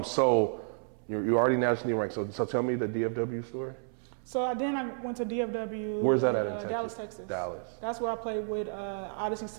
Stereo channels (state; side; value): silent; left; 57 dB below the other